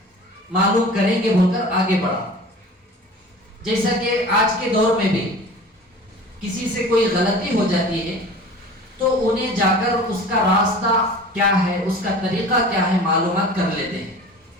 معلوم کریں گے بول کر آگے بڑھا. جیسا کہ آج کے دور میں بھی کسی سے کوئی غلطی ہو جاتی ہے تو انہیں جا کر اس کا راستہ کیا ہے، اس کا طریقہ کیا ہے معلومات کر لیتے ہیں.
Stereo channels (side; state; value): both; normal; correlation 0.40